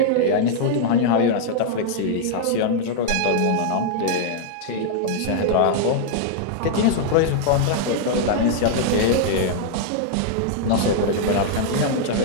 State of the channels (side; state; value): both; different; correlation -0.01